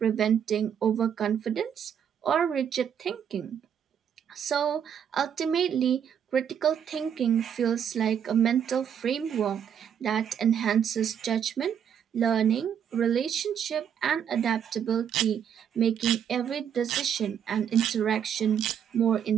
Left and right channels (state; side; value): quieter; left; 8.5 dB